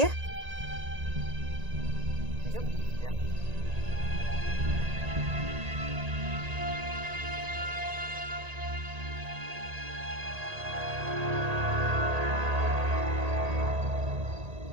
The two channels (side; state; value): left; late; 1.8 ms